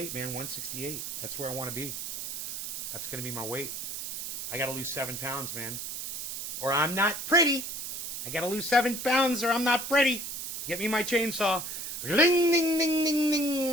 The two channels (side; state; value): right; noise; hiss, 5 dB below the sound